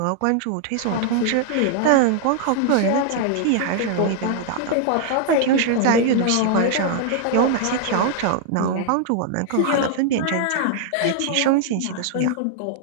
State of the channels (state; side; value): different; both; correlation 0.00